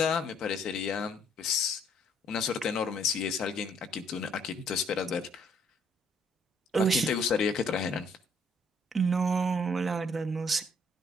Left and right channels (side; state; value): both; normal; correlation 0.65